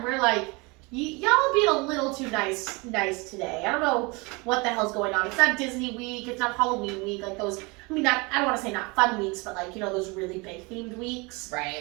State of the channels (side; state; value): left; quieter; 27.1 dB